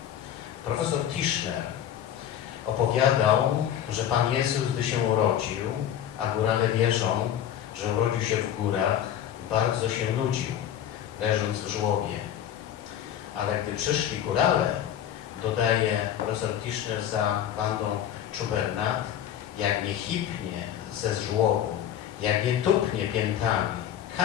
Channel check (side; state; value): right; quieter; 10.4 dB